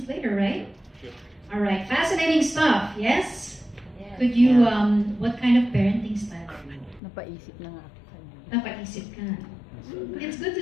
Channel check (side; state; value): right; drops out; at 7.0 s